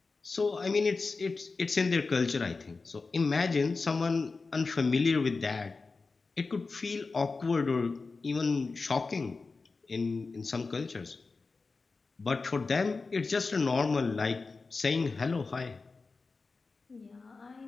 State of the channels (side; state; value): right; quieter; 4.1 dB